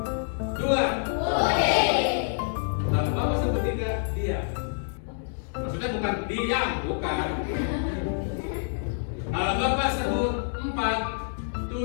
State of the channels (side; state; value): right; silent; digital silence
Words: Dua. Kalau Bapak sebut tiga, diam. Maksudnya bukan diam, bukan. Kalau Bapak sebut empat,